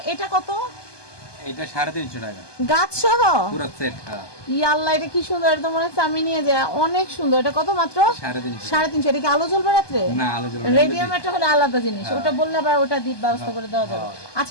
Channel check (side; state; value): right; late; 1.2 ms